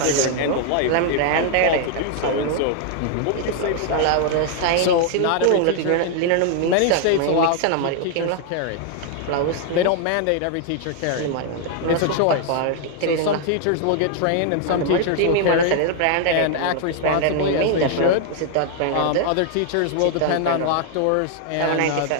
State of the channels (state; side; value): different; both; correlation 0.00